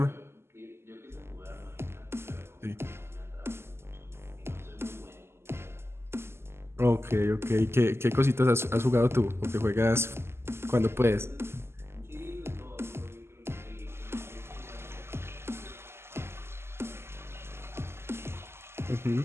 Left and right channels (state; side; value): late; left; 0.12 ms